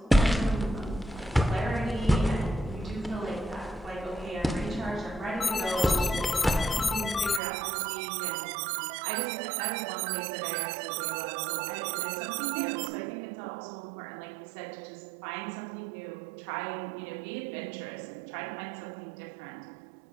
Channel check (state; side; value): drops out; left; at 7.4 s